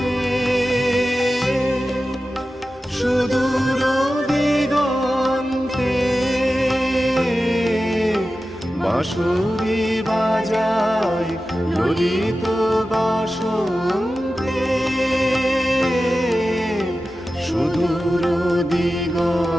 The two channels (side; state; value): both; normal; correlation 0.93